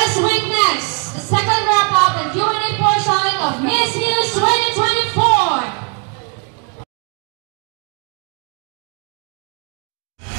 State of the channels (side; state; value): left; quieter; 36.6 dB